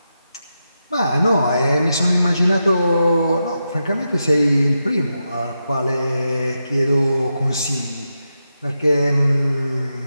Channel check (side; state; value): both; inverted; correlation -0.87